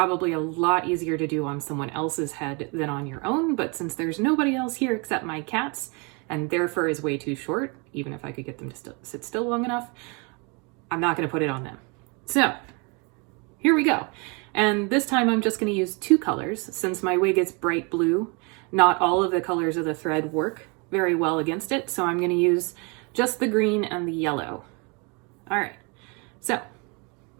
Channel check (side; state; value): left; quieter; 31.5 dB